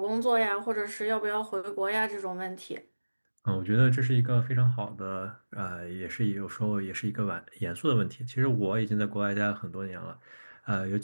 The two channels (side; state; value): both; inverted; correlation -1.00